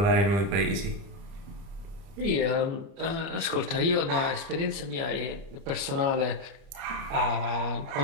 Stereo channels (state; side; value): late; left; 29 ms